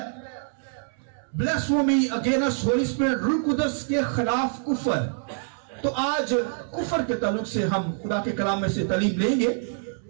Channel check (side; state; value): left; silent; 61 dB below the other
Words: بلیسفیمی اگینسٹ ہولی اسپرٹ، روح القدس کے خلاف کفر۔ تو آج کفر کے تعلق سے ہم خدا کے کلام میں سے تعلیم لیں گے،